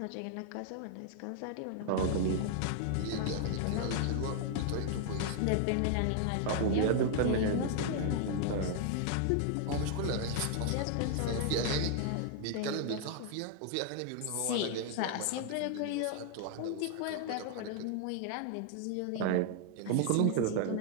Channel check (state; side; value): different; both; correlation 0.00